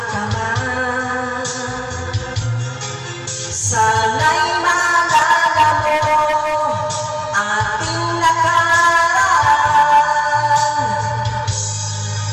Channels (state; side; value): identical; both; correlation 1.00